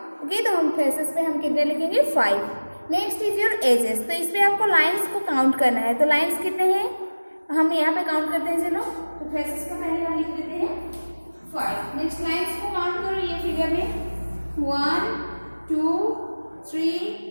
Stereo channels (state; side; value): inverted; both; correlation -1.00